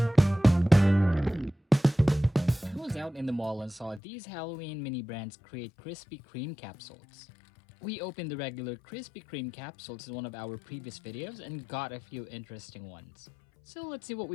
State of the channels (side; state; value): right; drops out; at 4.0 s